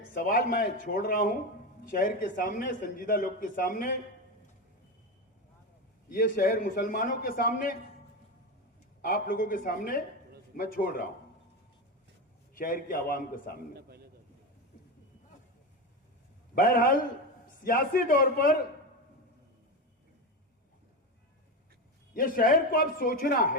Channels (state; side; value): normal; both; correlation 0.18